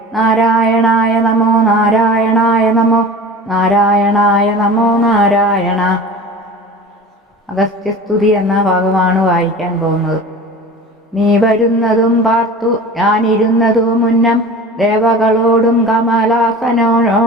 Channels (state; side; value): normal; both; correlation 0.37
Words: നാരായണായ നമോ നാരായണായ നമോ നാരായണായ നമോ നാരായണ. അഗസ്ത്യസ്തുതി എന്ന ഭാഗമാണ് വായിക്കാൻ പോകുന്നത്. നീ വരുന്നതും പാർത്തു ഞാനിരുന്നതും മുന്നം. ദേവകളോടും